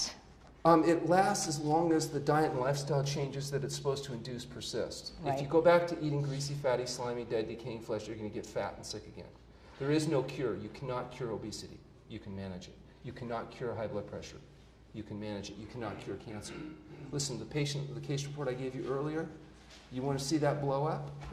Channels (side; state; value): both; identical; correlation 1.00